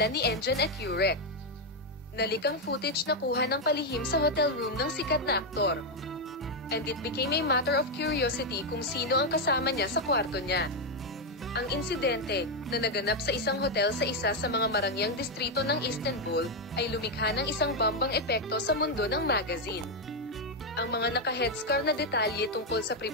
ni Engin Akyurek. Nalikang footage na kuha ng palihim sa hotel room ng sikat na aktor. And it became a matter of curiosity kung sino ang kasama niya sa kwarto niya. Ang insidente, na naganap sa isang hotel sa isa sa mga marangyang distrito ng Istanbul, ay lumikha ng isang bambang epekto sa mundo ng magazine. Ang mga naka-headscar na detalye tungkol sa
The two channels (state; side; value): normal; both; correlation 0.04